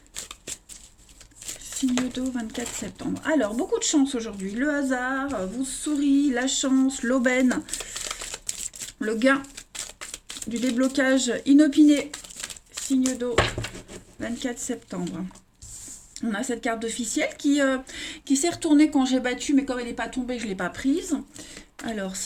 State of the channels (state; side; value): identical; both; correlation 1.00